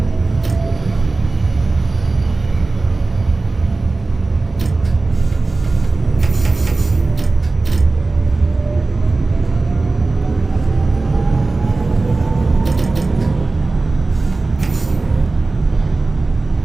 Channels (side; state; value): left; quieter; 3.5 dB